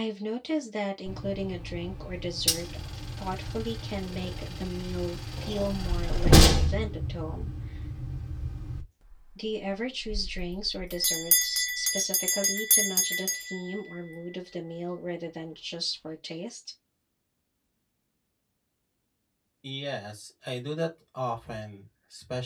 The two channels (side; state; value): both; identical; correlation 1.00